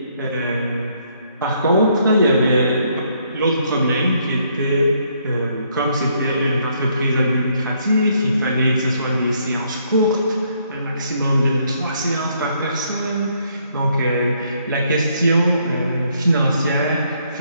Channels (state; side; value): inverted; both; correlation -0.70